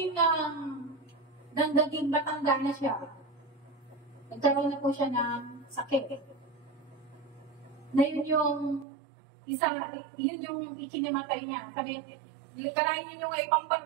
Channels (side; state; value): left; drops out; at 8.8 s